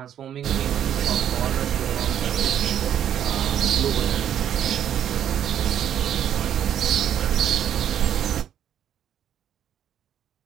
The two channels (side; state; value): left; quieter; 10.0 dB